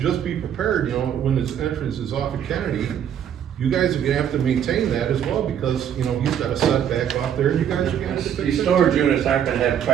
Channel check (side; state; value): left; quieter; 9.2 dB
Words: be prepared, when this entrance is off of Kennedy, you guys are gonna have to maintain that as well, because, he's got a setback off there, and you guys are gonna have to fix These it. storage units aren't gonna have